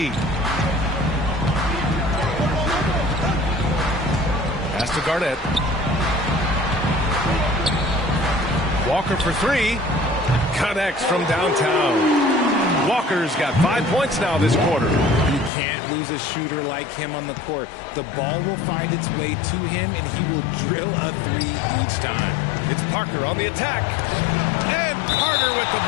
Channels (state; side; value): drops out; right; at 15.5 s